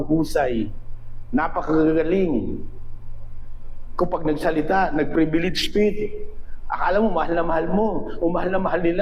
napakagagaling. Kapag nagsalita, nag-privilege speech, akala mo mahal na mahal mo, o mahal na mahal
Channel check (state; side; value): identical; both; correlation 1.00